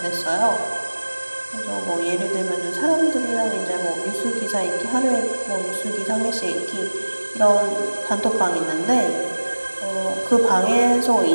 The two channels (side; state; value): both; inverted; correlation -1.00